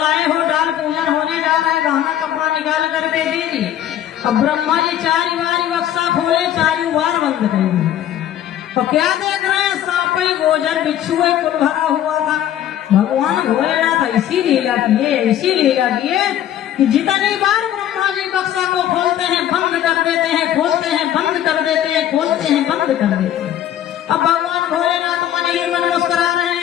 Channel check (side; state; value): right; quieter; 11.4 dB